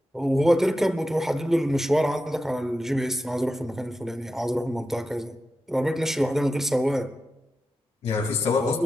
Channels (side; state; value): both; normal; correlation 0.90